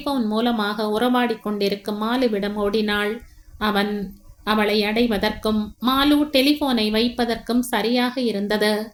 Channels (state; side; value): identical; both; correlation 1.00